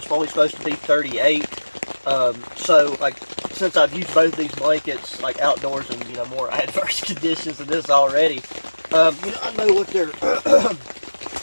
only supposed to be 38. So like since I've used both these blankets like outdoors in, you know, more adverse conditions than this already, you know, I know what they're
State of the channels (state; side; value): inverted; both; correlation -1.00